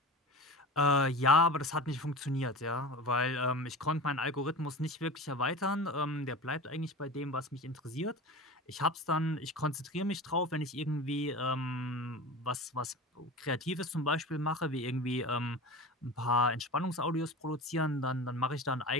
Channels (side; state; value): both; normal; correlation 0.32